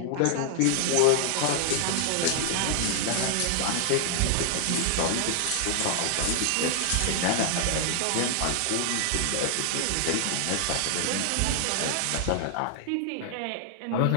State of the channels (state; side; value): different; both; correlation 0.00